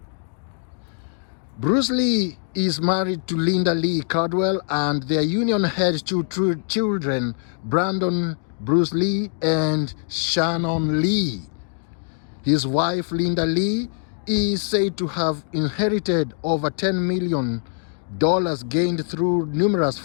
Bruce Lee is married to Linda Lee Cardwell, and their union had 2 children, Brandon Bruce Lee and Shannon Lee. His wife, Linda Lee, is said to have inherited over $10 million gained through numerous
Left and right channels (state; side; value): silent; right; digital silence